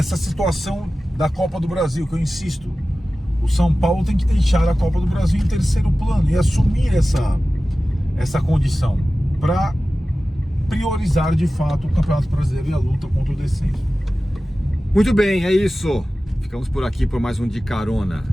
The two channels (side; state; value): both; normal; correlation 0.96